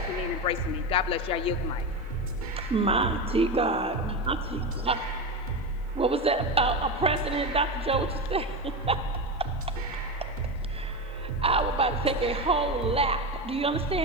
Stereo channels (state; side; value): normal; both; correlation 0.18